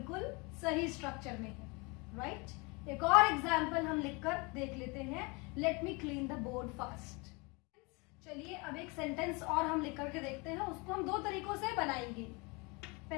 सही स्ट्रक्चर में है, राइट। एक और एग्जाम्पल हम लिखकर देख लेते हैं। Let me clean the board fast. चलिए अब एक सेंटेंस और हम लिख करके देखते हैं, उसको हम दो तरीकों से बनाएंगे।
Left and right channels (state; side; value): quieter; right; 28.3 dB